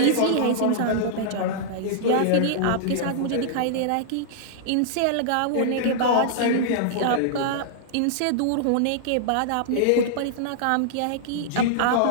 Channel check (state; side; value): different; both; correlation -0.02